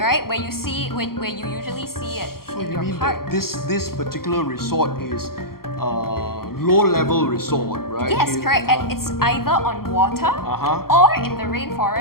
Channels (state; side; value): late; right; 0.93 ms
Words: Where you see where you usually see it So in you your mean park. that this particular resort is low-level resort, right? Yes, correct. And it's either on water or in the